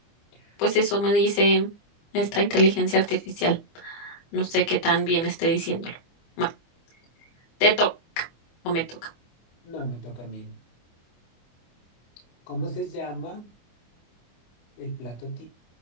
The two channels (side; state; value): right; late; 24 ms